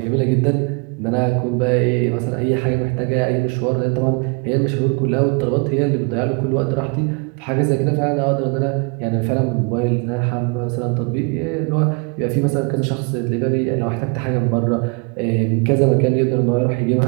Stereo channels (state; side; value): quieter; left; 32.8 dB